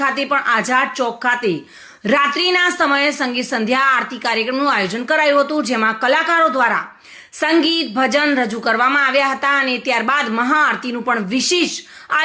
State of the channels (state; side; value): identical; both; correlation 1.00